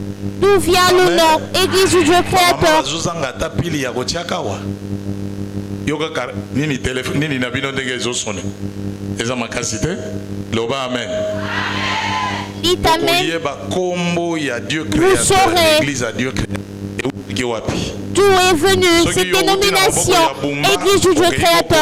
d'où vient le nom Église du Dieu Créateur. Dites Amen. Vous saurez d'où est venue cette dénomination Église du Dieu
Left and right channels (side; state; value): both; identical; correlation 1.00